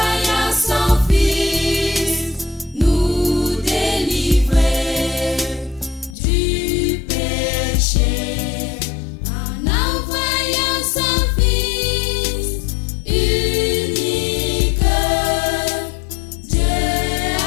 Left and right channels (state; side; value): drops out; right; at 6.2 s